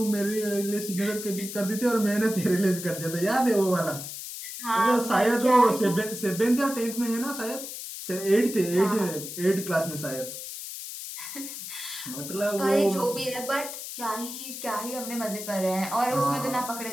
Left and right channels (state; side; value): noise; left; hiss, 9 dB below the sound